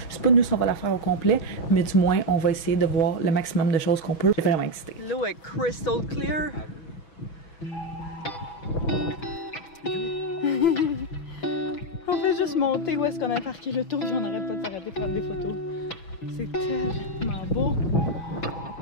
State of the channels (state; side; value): late; right; 6.1 ms